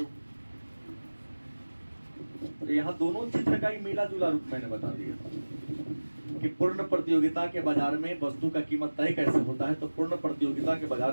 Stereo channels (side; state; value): both; inverted; correlation -1.00